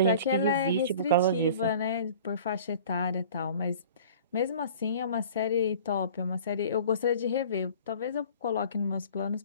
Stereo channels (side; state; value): both; inverted; correlation -0.46